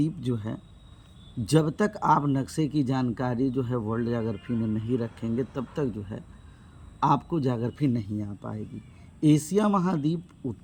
जो है, जब तक आप नक्शे की जानकारी जो है वर्ल्ड ज्योग्राफी में नहीं रखेंगे तब तक जो है आपको ज्योग्राफी नहीं आ पाएगी। एशिया महाद्वीप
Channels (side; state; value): both; identical; correlation 1.00